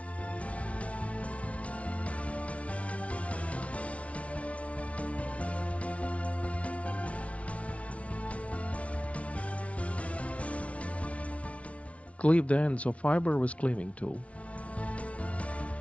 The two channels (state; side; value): late; right; 0.063 ms